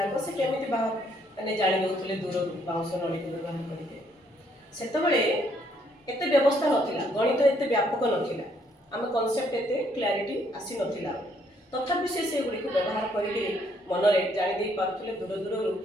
से केमी मैंने जाणी दौले दूर बाउंस नली को व्यवहार करके सेतबेले एते व्यवस्था नथिला गणित एते व्यापक नथिला आम कॉन्सेप्ट एते क्लैरिटी आसी नथिला तथापि से गुड़ी को व्यवहार करके मनरे जानी दे पारुथिले दूर दूर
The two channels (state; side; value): normal; both; correlation 0.69